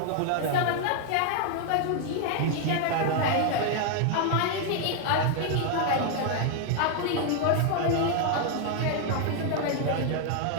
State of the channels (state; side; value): different; both; correlation 0.00